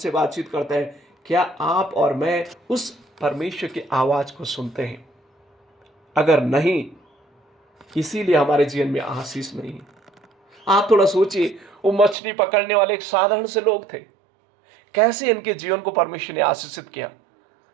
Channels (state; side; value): drops out; left; at 12.2 s